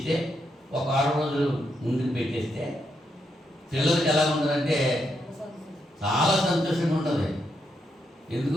ఒక 6 రోజులు ముందుకు పెట్టేస్తే పిల్లలకి ఎలా ఉంటుందంటే చాలా సంతోషంగా ఉంటుంది.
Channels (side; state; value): both; normal; correlation 0.80